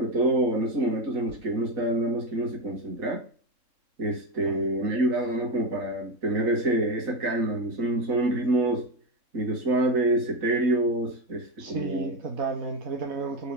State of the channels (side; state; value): left; late; 3.6 ms